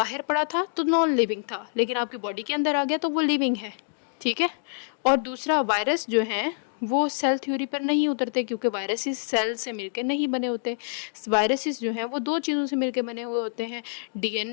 पड़ा था तो नॉन लिविंग था, लेकिन आपकी बॉडी के अंदर आ गया तो वो लिविंग है। ठीक है, और दूसरा, वायरस जो हैं वो सेल थ्योरी पर नहीं उतरते क्योंकि वायरसेस सेल से मिलकर नहीं बने होते। वायरसेस जो हैं वो दो चीज़ों से मिलकर बने हुए होते हैं,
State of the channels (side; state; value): right; silent; digital silence